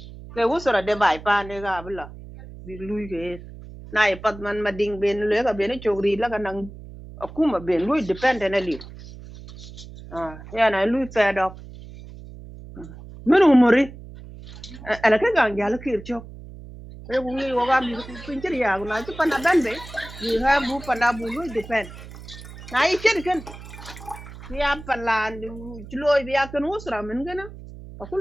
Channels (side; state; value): right; noise; hum, 15 dB below the sound